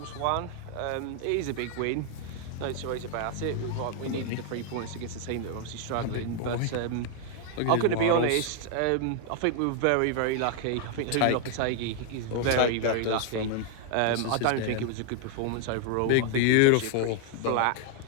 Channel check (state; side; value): different; both; correlation 0.00